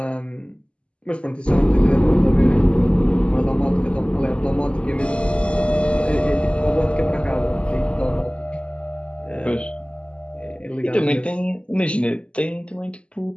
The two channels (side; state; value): right; late; 0.054 ms